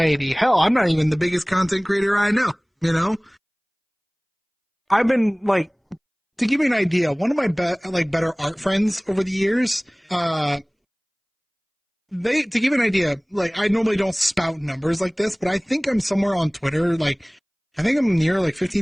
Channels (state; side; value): identical; both; correlation 1.00